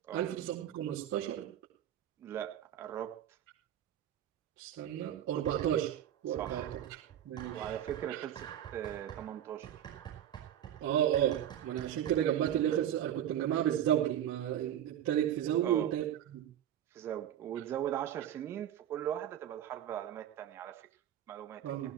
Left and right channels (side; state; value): left; quieter; 10.9 dB